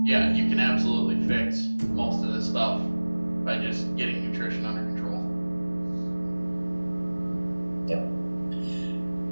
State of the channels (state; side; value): inverted; both; correlation -1.00